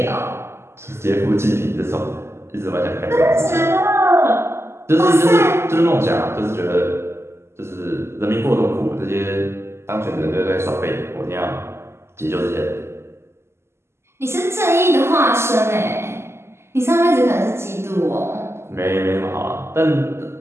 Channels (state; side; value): late; left; 0.12 ms